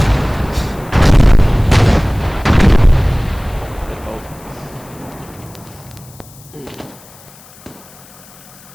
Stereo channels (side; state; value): left; noise; hiss, 23 dB below the sound